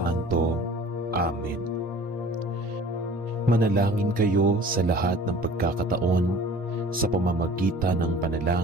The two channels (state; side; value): normal; both; correlation 0.46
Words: Amen. Manalangin kayo sa lahat ng pagkakataon sa pamamagitan ng